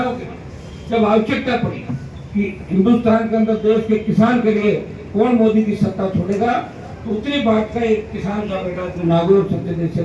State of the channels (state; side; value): identical; both; correlation 1.00